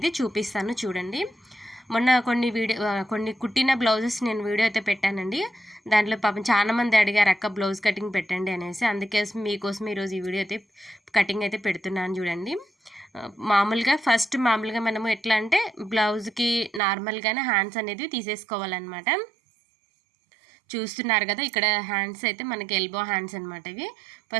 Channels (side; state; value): left; drops out; at 16.8 s